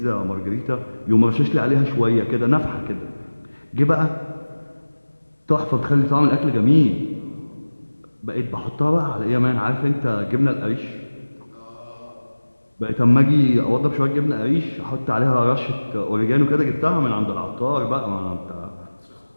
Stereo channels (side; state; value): both; inverted; correlation -1.00